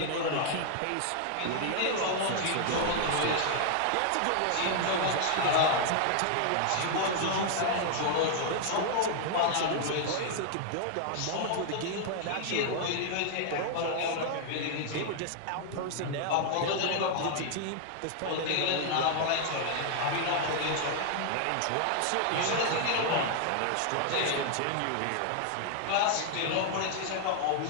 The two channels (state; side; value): different; both; correlation 0.00